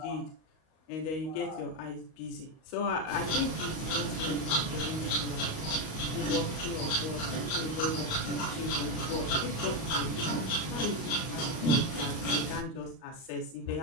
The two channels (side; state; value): right; late; 37 ms